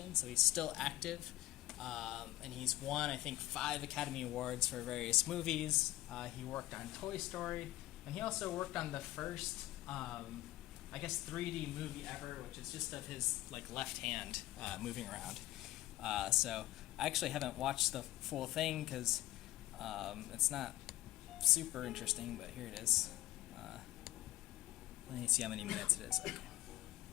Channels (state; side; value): quieter; right; 16.7 dB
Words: so he's still active. And he's won, I think, 5 Academy Awards for various movies. He worked on Toy Story, and he also worked on the first, I guess, 3D movie ever, which is just of his left hand moving around. So I actually haven't watched the full thing because it's not super interesting, but here it is. Let me see how many minutes it is.